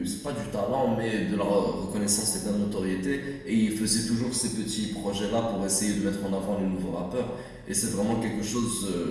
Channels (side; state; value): both; identical; correlation 1.00